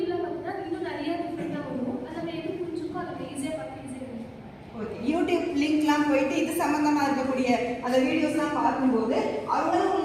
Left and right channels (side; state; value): both; identical; correlation 1.00